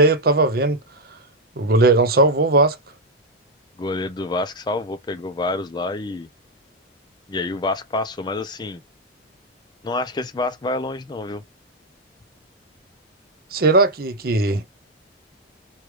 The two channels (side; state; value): both; normal; correlation 0.02